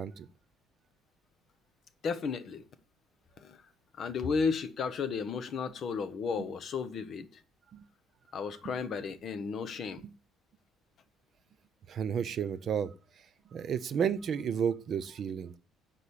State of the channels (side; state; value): both; normal; correlation 0.66